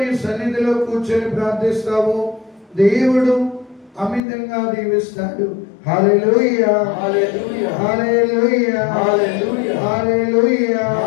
సన్నిధిలో కూర్చొని ప్రార్థిస్తావో, దేవుడు అమితంగా దీవిస్తాడు. హల్లెలూయా హల్లెలూయా హల్లెలూయా హల్లెలూయా హల్లెలూయా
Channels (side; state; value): right; drops out; at 4.2 s